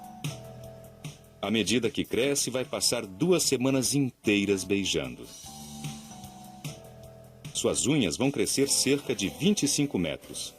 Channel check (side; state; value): both; identical; correlation 1.00